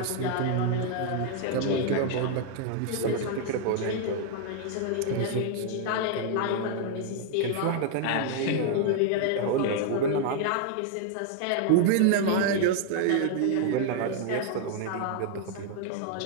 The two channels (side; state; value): both; different; correlation 0.00